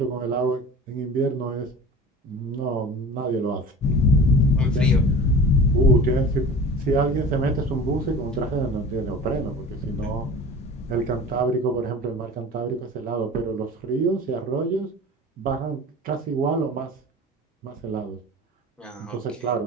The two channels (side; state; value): both; normal; correlation 0.38